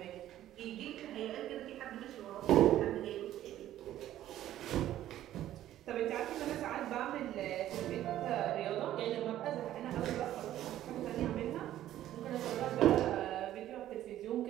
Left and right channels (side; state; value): left; quieter; 12.9 dB